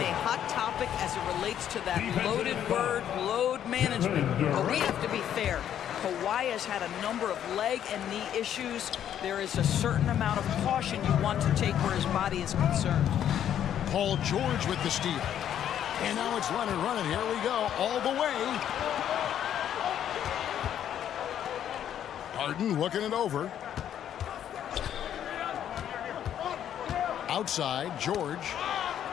a hot topic as it relates to that loaded word, load management. But we have to be fair. Kawhi has had a number of leg and knee issues. There is a certain amount of caution you want to take where his body is concerned. Paul George with the steal. And now it's Leonard running. Here we go, all the way. Harden looking it over. Outside, George.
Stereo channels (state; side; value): quieter; right; 10.1 dB